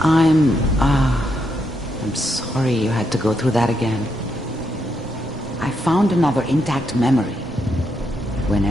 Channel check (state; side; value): normal; both; correlation 0.80